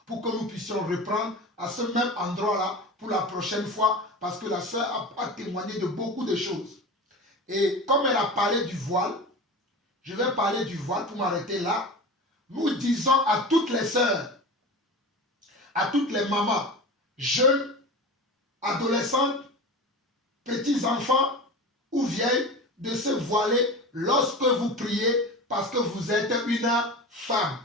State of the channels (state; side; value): normal; both; correlation 0.30